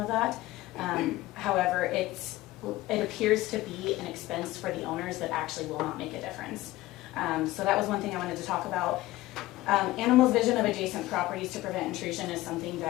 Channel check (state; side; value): quieter; right; 17.5 dB